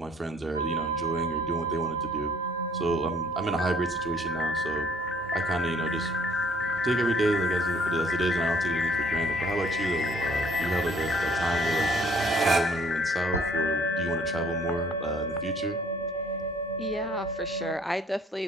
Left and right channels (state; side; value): normal; both; correlation 0.58